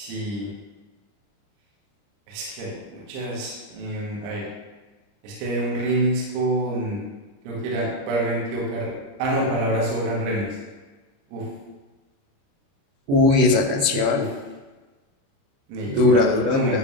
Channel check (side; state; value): left; late; 29 ms